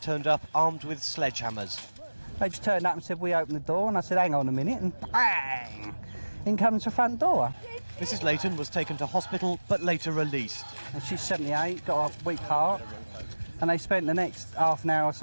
up armed with sledgehammers. They just turned up and said, we open the door, and I said, hang on a minute, and bang! In comes the front door. Mrs. Leyton was taken to hospital, but later released. And she's 78, got a weak heart, and they spent the next half an hour or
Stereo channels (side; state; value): both; inverted; correlation -1.00